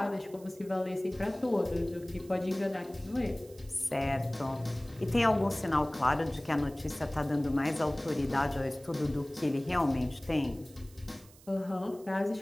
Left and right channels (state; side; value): noise; right; hiss, 24 dB below the sound